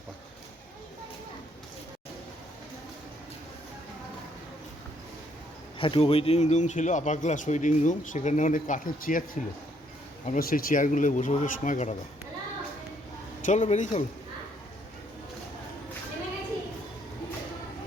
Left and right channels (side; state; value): both; normal; correlation 0.69